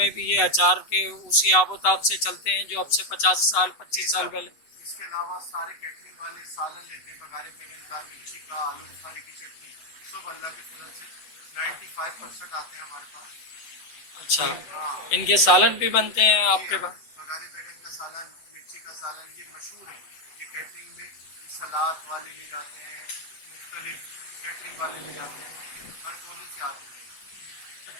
भी ये अचार के उसी आबोताब से चलते हैं जो अब से 50 साल जी 25 साल सर, पहले। इसके अलावा सारे कैटरिंग वाले सालन लेते हैं, बघारे बैगन का, मिर्ची का, आलू बुखारे की चटनी, सब अल्लाह के फजल से 95% आते हैं हमारे पास। अच्छा, कोई हाँ इनके सालन भी बनते हैं जी आपके हाँ, पास। बघारे बैगन का सालन, मिर्ची का सालन, ये मशहूर है। ये कैटरिंग में ये सलाद वाले ले जाते हैं, मुख्तलिफ कैटरिंग वाले ले जाते हैं, हर कोने से आते हैं।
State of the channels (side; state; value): right; late; 8.0 ms